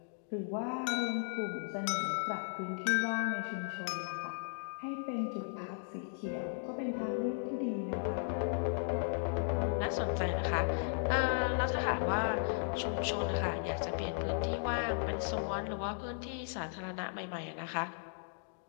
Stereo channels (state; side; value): silent; right; digital silence